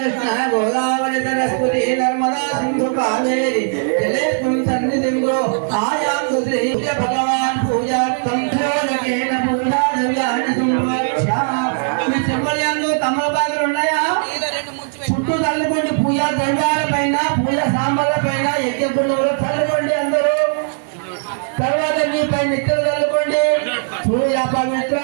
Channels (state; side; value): silent; left; digital silence